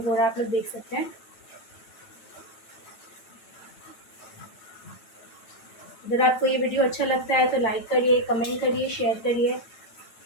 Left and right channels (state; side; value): late; right; 9.0 ms